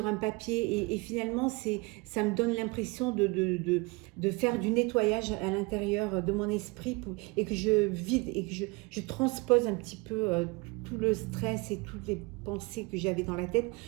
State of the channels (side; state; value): left; quieter; 26.1 dB